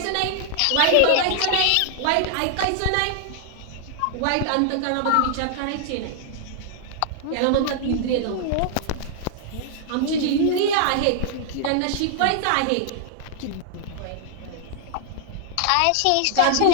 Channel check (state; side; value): different; both; correlation 0.00